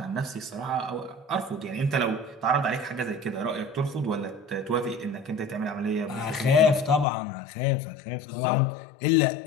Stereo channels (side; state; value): right; drops out; at 7.1 s